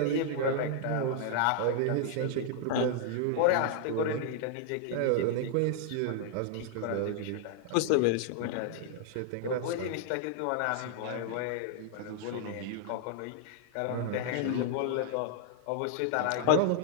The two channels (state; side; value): different; both; correlation -0.01